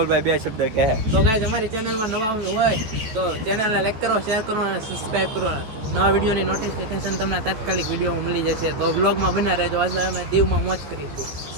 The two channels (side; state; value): left; late; 14 ms